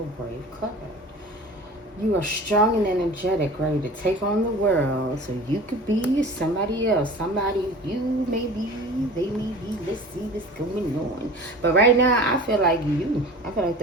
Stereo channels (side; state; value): both; normal; correlation 0.40